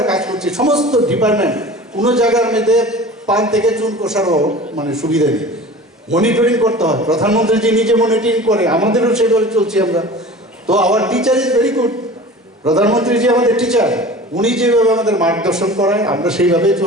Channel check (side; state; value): both; normal; correlation 0.39